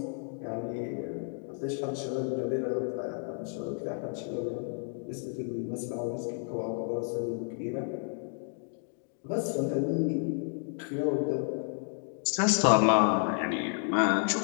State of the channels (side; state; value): right; silent; 57 dB below the other